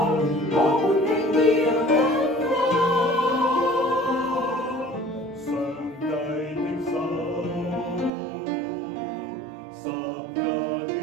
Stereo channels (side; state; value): left; drops out; at 8.1 s